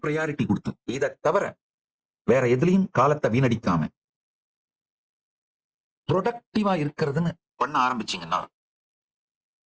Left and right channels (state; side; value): identical; both; correlation 1.00